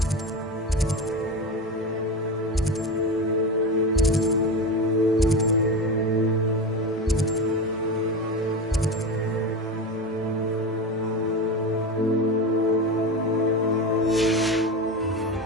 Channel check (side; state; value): both; normal; correlation 0.22